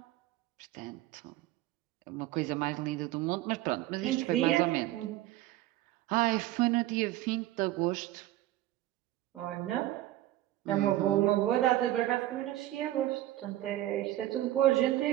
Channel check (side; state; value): left; quieter; 15.0 dB